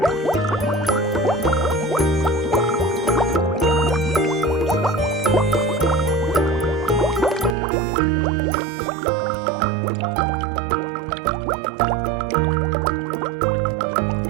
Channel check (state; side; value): drops out; left; at 7.6 s